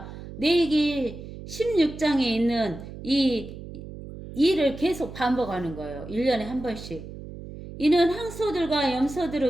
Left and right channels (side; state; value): right; noise; hum, 12 dB below the sound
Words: 내기 16장에 있는 이 일을 계속 반복하는 거예요. 1년에 한 번씩. 이는 항소들과